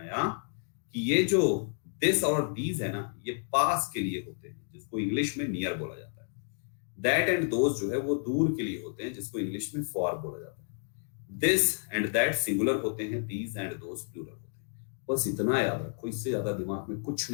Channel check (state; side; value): silent; right; 57 dB below the other